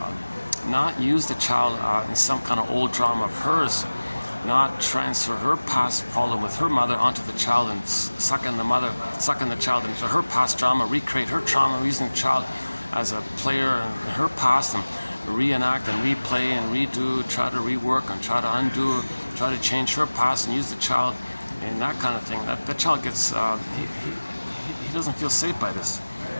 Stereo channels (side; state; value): both; inverted; correlation -1.00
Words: not use the child in some kind of old drama of hers, not transfer her past problem with her mother onto the child and sucking the child into her past drama, recreate her trauma, using the child as a player in her past, and reenact and replay and redo, try to rework and try to undo, try to change her past and use the child in that kind of thing. That the child gets, he doesn't feel safe by this.